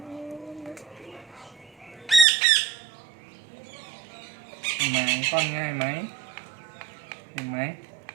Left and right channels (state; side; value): drops out; left; at 2.2 s